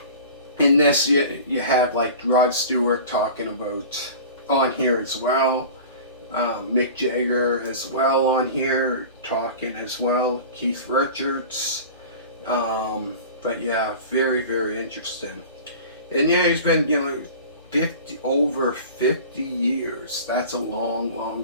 in this, you have Rod Stewart talking about on here as well. Mick Jagger as well on here talking as well. Keith Richards. But yeah, very, very interesting. And yeah, he's been over 50 years. That's a long,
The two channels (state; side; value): inverted; both; correlation -0.38